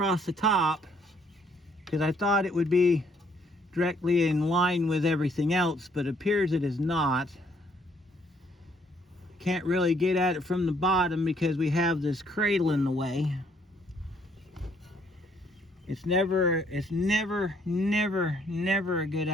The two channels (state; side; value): normal; both; correlation 0.66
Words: the top because I thought it would be directly in line with everything else, but it appears it is not. Can't really get at it from the bottom because we have this cradle in the way. It's never a good